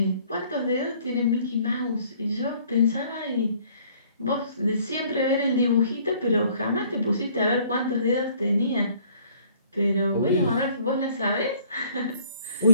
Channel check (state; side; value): inverted; both; correlation -0.58